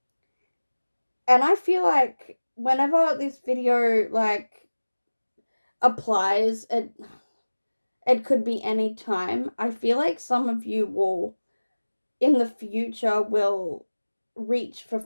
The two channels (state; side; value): inverted; both; correlation -1.00